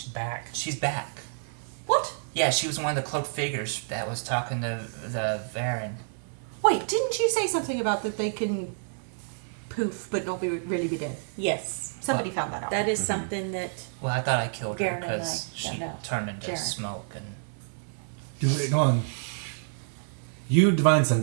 back. She's back. What? Yeah, she was one of the cloaked figures that was talking to the Varen. Wait, didn't you say something about that they can poof but not really be dead? Yes. Somebody found that out. That is something that Well, I thought I killed her Garen and because I she found out. turned into Garen. smoke and. Go on. You, Divine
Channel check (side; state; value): left; silent; 59 dB below the other